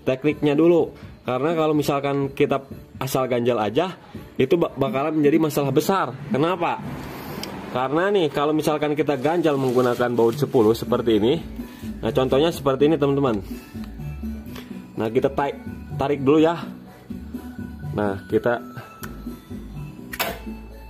tekniknya dulu. Karena kalau misalkan kita asal ganjal aja itu bakalan menjadi masalah besar. Kenapa? Karena nih kalau misalkan kita ganjal menggunakan baut 10 seperti ini. Nah contohnya seperti ini teman-teman. Nah kita tarik dulu ya. Nah kita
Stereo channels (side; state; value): both; identical; correlation 1.00